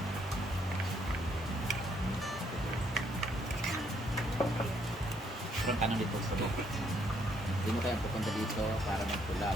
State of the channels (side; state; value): both; normal; correlation 0.70